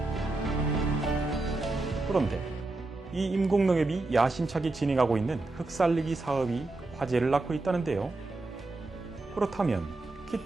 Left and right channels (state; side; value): quieter; left; 3.1 dB